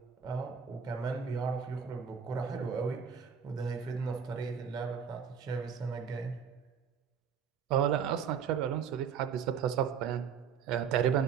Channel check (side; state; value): left; quieter; 7.1 dB